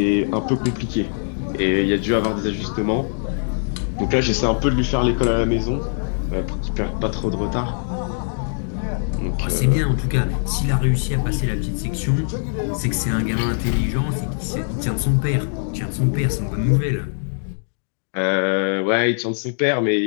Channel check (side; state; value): right; silent; digital silence